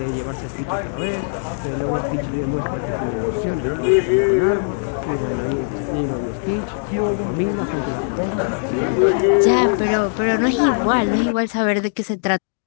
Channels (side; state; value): right; silent; digital silence